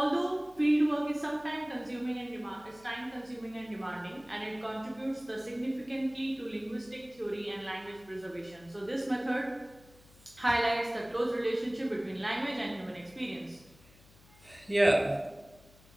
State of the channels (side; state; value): left; noise; hum, 25 dB below the sound